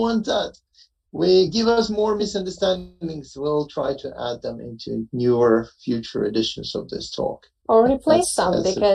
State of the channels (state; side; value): identical; both; correlation 1.00